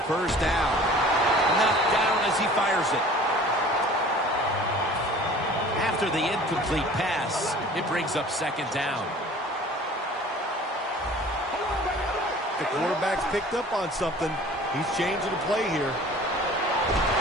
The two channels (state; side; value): normal; both; correlation 0.46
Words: 1st down. Knocked down as he fires it. After the incomplete pass, it brings up 2nd down. The quarterback's picked up on something. He's changing the play here.